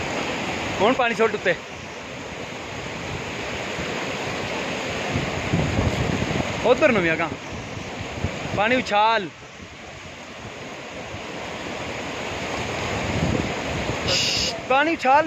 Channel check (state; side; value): identical; both; correlation 1.00